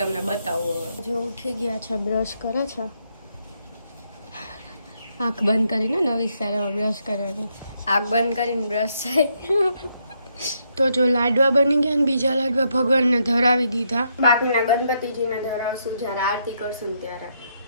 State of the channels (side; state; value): both; inverted; correlation -0.76